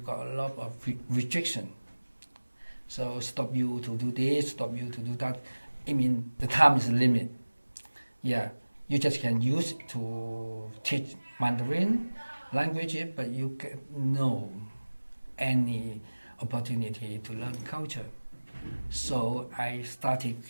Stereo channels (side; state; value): both; inverted; correlation -1.00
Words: a lot of restriction. So stop you to do this, stop you to do that. I mean, the time is a limit. Yeah, you just can use it to teach Mandarin language, but you get no any opportunity to learn culture. So I started to